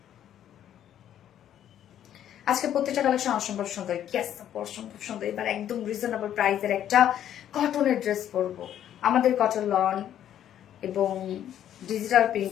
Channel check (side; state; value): right; quieter; 10.7 dB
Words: আজকে প্রত্যেকটা কালেকশন অসম্ভব সুন্দর। ইয়েস, অসম্ভব সুন্দর। এবার একদম রিজনেবল প্রাইসের একটা কটনের ড্রেস পরবো। আমাদের কটন লন এবং ডিজিটাল